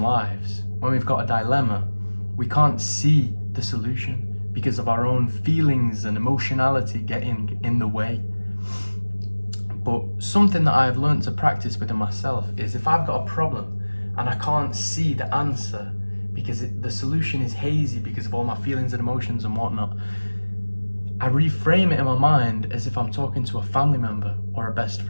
when we've got a dilemma, we can't see the solution because of our own feelings and emotionality getting in the way. But something that I've learned to practice within myself is if I've got a problem and I can't see the answer because the solution is hazy because of all my feelings and emotions and whatnot, I reframe it in my mind as if I'm talking to a family member or a best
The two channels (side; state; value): both; inverted; correlation -1.00